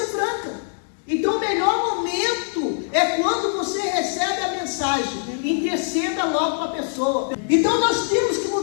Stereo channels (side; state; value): right; silent; digital silence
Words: franca. Então o melhor momento é quando você recebe a mensagem. Interceda logo para a pessoa. Então nós temos que